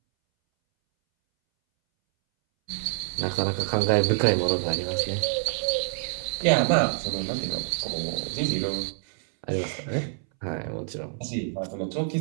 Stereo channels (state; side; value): silent; left; 60 dB below the other